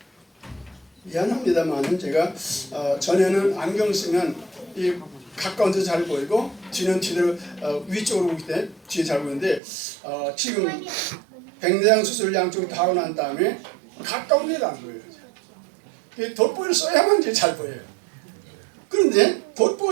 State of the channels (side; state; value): left; drops out; at 9.6 s